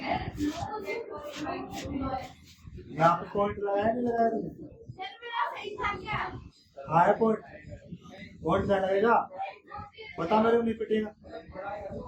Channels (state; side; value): identical; both; correlation 1.00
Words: यहाँ पे पॉइंट लगाया नहीं लगाया हाँ है पॉइंट पॉइंट क्या लगेगा बता मेरे को नहीं पिटेगा